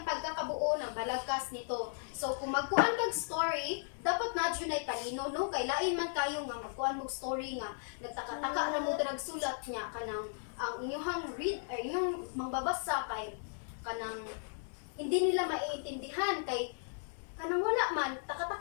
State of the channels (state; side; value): silent; right; digital silence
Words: pagkakabuo ng balagkas nito. So kung magkuan kag story, dapat na dyan ay palino no? Kay lain man kayo nga magkuan mong story nga nagtaka-taka na mo drag sulat niya kanang ang inyong read or inyong mangbabasa kay kanang hindi nila maiintindihan kay kanang wala man